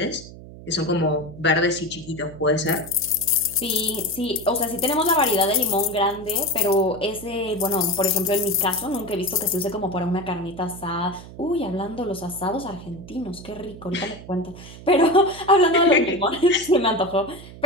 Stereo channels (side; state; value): right; noise; hum, 16 dB below the sound